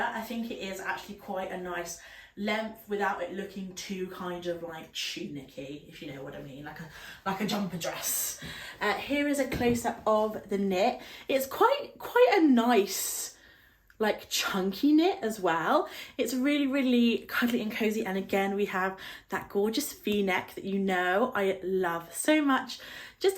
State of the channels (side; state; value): both; identical; correlation 1.00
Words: I think it is actually quite a nice length without it looking too kind of like tunicky, if you know what I mean, like a jumper dress. Here is a close-up of the knit. It's quite a nice like chunky knit as well. It's really, really cuddly and cozy, and again we have that gorgeous v-neck that you know I love so much.